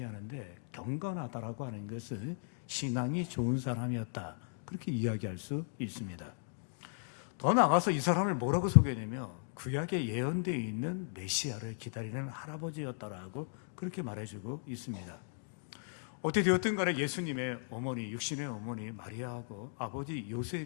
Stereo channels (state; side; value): silent; right; digital silence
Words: 경건하다라고 하는 것을 신앙이 좋은 사람이었다, 그렇게 이야기할 수 있습니다. 더 나아가서 이 사람을 뭐라고 소개하냐면 구약에 예언되어 있는 메시아를 기다리는 할아버지였다라고 그렇게 말해주고 있습니다. 어떻게 되었든 간에 예수님의 어머니, 육신의 어머니 마리아하고 아버지